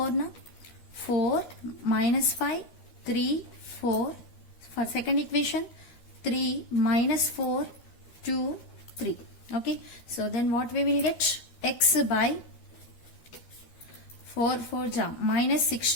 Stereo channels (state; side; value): late; right; 13 ms